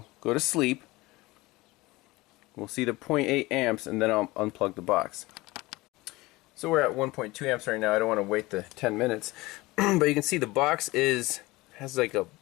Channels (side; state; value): right; quieter; 20.9 dB